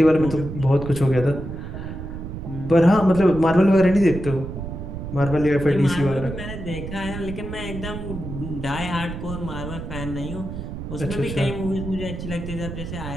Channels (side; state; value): right; noise; rumble, 8 dB below the sound